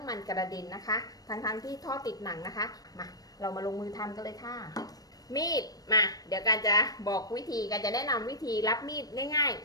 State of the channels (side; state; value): right; late; 0.18 ms